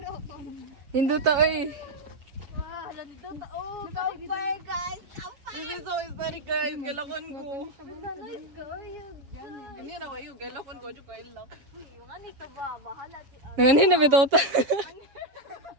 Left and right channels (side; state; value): left; late; 7.3 ms